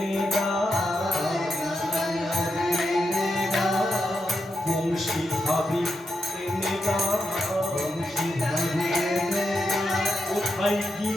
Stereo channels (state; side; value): normal; both; correlation 0.85